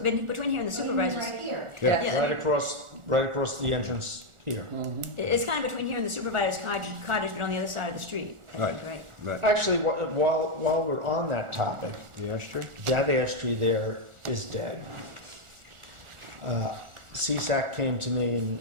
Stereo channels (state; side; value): late; left; 1.4 ms